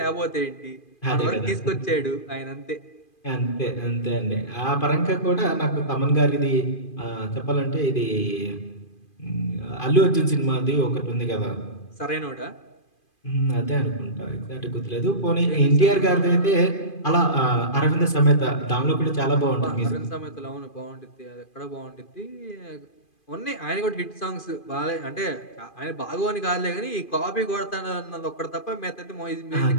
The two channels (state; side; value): late; right; 2.4 ms